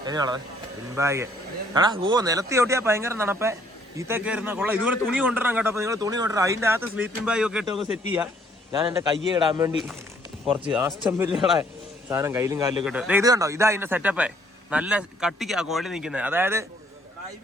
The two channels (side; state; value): both; normal; correlation 0.64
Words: എങ്ങനെയാണത് പിൻബാഗ് എടാ. നിലത്തി ഓട്ടിയാ ഭയങ്കര തണുപ്പേ. ഈത്തൊക്കെ ഇരുന്ന കൊള്ളാം. ഇതുപോലെ തുണി കൊണ്ടുവരണം കേട്ടോ. അപ്പൊ നിങ്ങൾ തുണി കൊണ്ടുവരാം. അതിന്റെ അകത്ത് സ്ലീപ്പിംഗ് ബാഗ് ഒക്കെ ഇട്ട് നമുക്ക് സെറ്റ് ചെയ്യാം. ഞാൻ എന്റെ കയ്യെ ഇടാൻ വേണ്ടി കുറച്ച് ആസ്റ്റംബില്ലുകളെ സാധനം കയ്യിലും കാലിലും ഇട്ട്. ഇത് കണ്ടോ, ഇതാ അതിന്റെ സെറ്റപ്പേ. നല്ല കട്ടിക്കാ കുഴൽ നിൽക്കുന്നത്. അതായത്